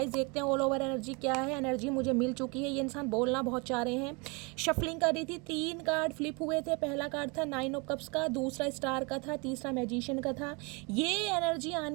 देखते हैं ऑल ओवर एनर्जी क्या है। एनर्जी मुझे मिल चुकी है। ये इंसान बोलना बहुत चाह रहे हैं। शफलिंग कर रही थी, 3 कार्ड फ्लिप हुए थे। पहला कार्ड था 9 ऑफ कप्स का, दूसरा स्टार का था, तीसरा मैजिशियन का था। ये एनर्जी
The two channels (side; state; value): left; quieter; 30.3 dB